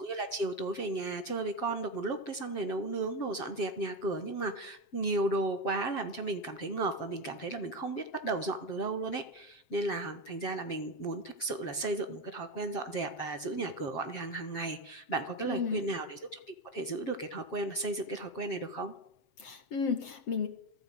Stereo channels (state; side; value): late; right; 7.1 ms